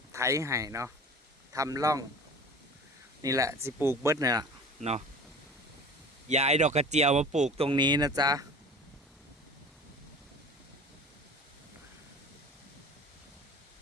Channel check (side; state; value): both; normal; correlation 0.40